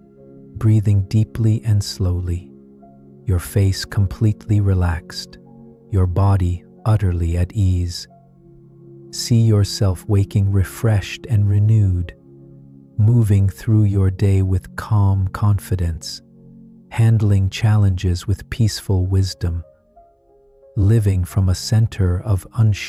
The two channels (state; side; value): identical; both; correlation 1.00